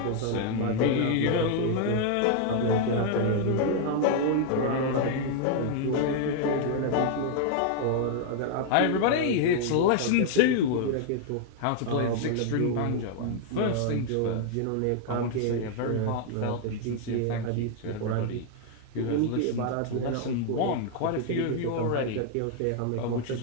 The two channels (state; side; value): different; both; correlation 0.00